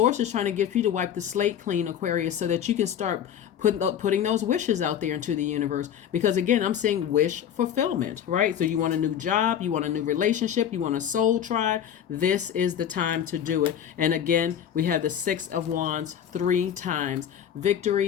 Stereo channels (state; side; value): quieter; right; 9.4 dB